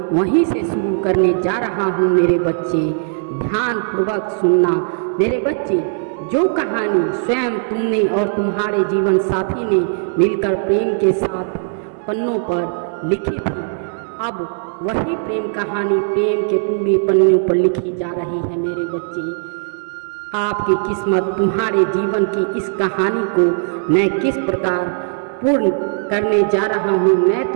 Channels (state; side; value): silent; left; 62 dB below the other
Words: वहीं से शुरू करने जा रहा हूँ मेरे बच्चे। ध्यानपूर्वक सुनना मेरे बच्चे। जो कहानी स्वयं तुमने और तुम्हारे जीवन साथी ने मिलकर प्रेम के साथ पन्नों पर लिखी थी, अब वही प्रेम कहानी प्रेम के पूरे पन्नों पर लिखी जा रही है मेरे बच्चे। आपकी किस्मत, तुम्हारे जीवन की इस कहानी को मैं किस प्रकार पूर्ण करने जा रहा हूँ मैं